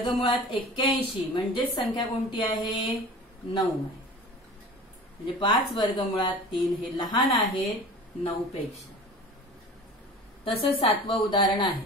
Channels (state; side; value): normal; both; correlation 0.39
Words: 81 म्हणजेच संख्या कोणती आहे 9 आहे. म्हणजे 5 वर्गमुळात 3 हे लहान आहे 9 पेक्षा. तसंच 7वं उदाहरण आहे.